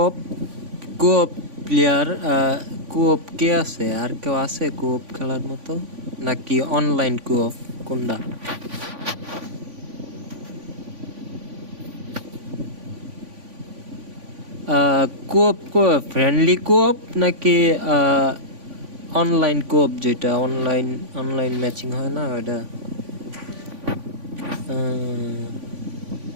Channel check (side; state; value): left; late; 3.5 ms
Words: কোঅপ প্লেয়ার কোঅপ কে আছে আর কেউ আছে কোঅপ খেলার মতো নাকি অনলাইন কোঅপ কোনটা কোঅপ ফ্রেন্ডলি কোঅপ নাকি অনলাইন কোঅপ যেটা অনলাইন ম্যাচিং হয় না ওটা